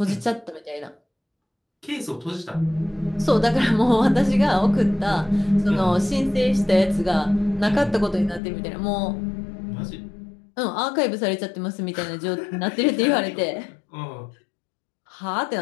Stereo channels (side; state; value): right; drops out; at 8.4 s